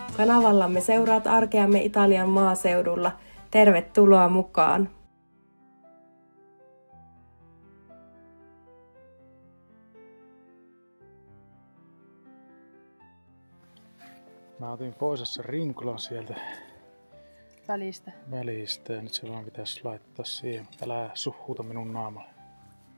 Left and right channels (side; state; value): both; inverted; correlation -1.00